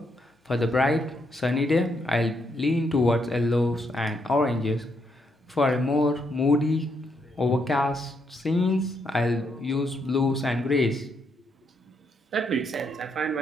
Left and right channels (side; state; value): both; normal; correlation 0.77